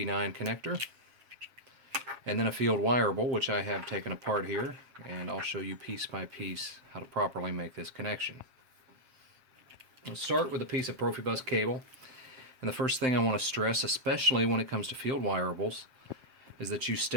connector, and then a field wireable, which I have taken apart here, and I'll show you piece by piece how to properly make this connection. Let's start with a piece of Profibus cable, and the first thing I want to stress, especially when it comes to field wireables, is that you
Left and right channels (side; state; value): left; late; 7.4 ms